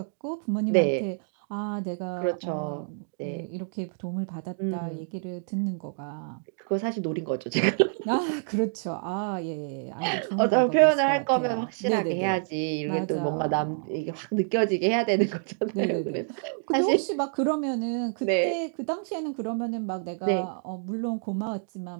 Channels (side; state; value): left; silent; digital silence